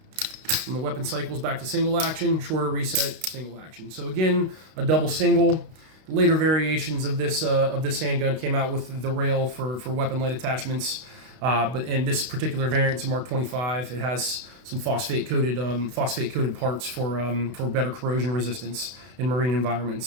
from the weapon cycles back to single action, shorter reset, single action. So again, a double single. Later variations of this handgun came out with the rail for weapon light attachments, and this particular variant is a Mark 25. It has some phosphate coated parts for better corrosion resistance in marine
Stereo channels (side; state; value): left; late; 32 ms